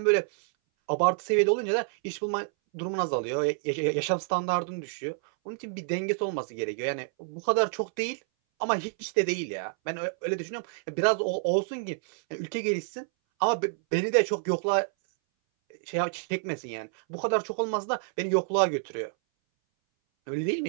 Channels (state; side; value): silent; left; 59 dB below the other